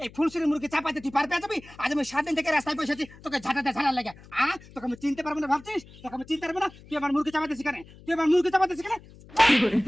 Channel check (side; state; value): left; noise; hum, 21 dB below the sound